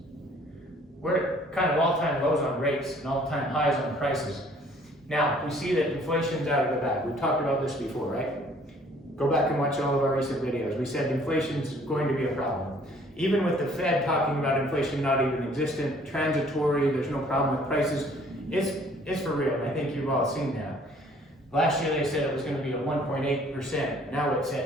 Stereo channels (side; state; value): both; normal; correlation 0.57